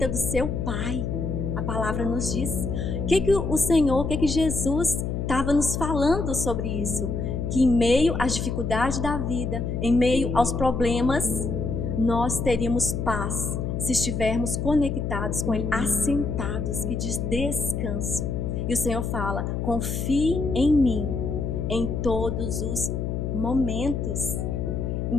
do seu Pai. A palavra nos diz. O que o Senhor, o que Jesus estava nos falando sobre isso? Que em meio às dificuldades da vida, em meio aos problemas, nós teríamos paz se estivermos conectados com Ele, assentados, que diz descanso. E o Senhor fala, confie em mim em todos os momentos.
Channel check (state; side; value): noise; left; hum, 2 dB below the sound